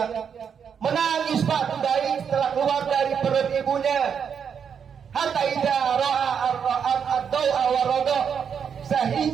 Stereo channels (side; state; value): left; quieter; 7.2 dB